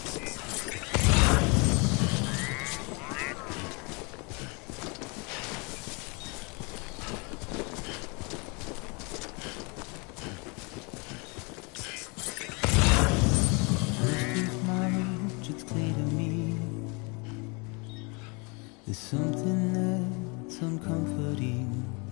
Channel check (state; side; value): quieter; right; 31.0 dB